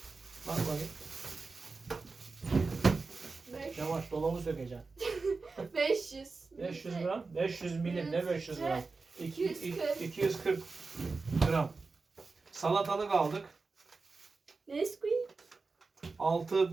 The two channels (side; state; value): left; quieter; 4.1 dB